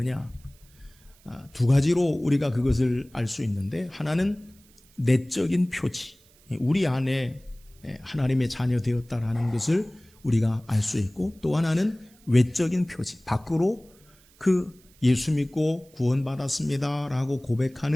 두 가지로 우리가 그것을 알 수 있는데, 하나는 내적인 표지, 우리 안에 하나님의 자녀 되었다라는 것을 우리가 알 수 있고, 또 하나는 외적인 표지, 밖으로 그 예수 믿고 구원받았습니다 라고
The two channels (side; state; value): right; noise; hiss, 29 dB below the sound